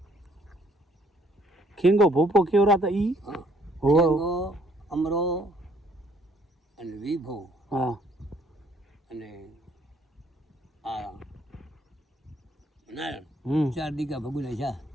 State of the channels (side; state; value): both; normal; correlation 0.64